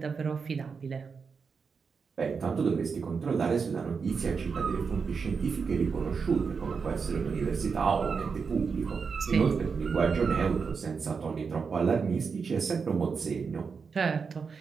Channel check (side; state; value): left; quieter; 5.5 dB